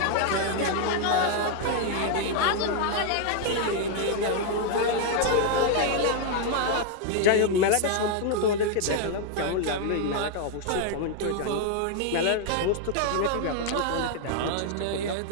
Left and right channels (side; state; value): both; different; correlation 0.00